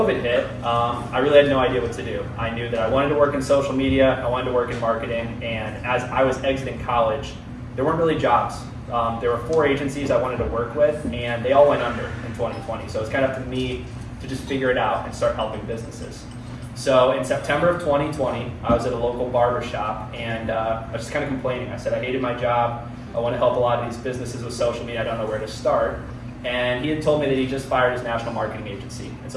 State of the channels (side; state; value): both; identical; correlation 1.00